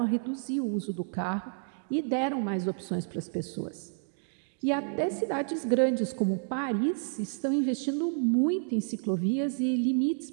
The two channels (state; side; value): silent; left; digital silence